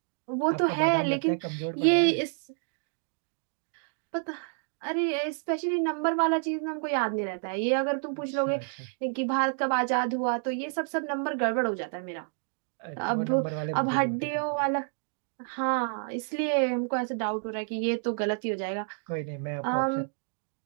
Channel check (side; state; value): left; silent; 58 dB below the other